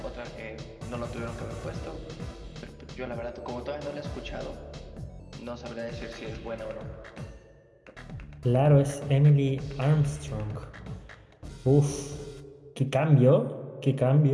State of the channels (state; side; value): identical; both; correlation 1.00